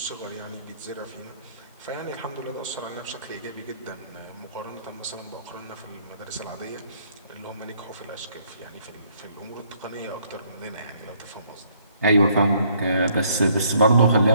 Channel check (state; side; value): inverted; both; correlation -0.65